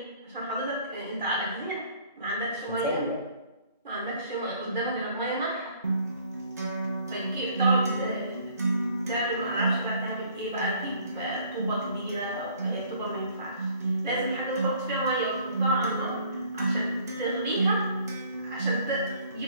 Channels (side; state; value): both; inverted; correlation -0.58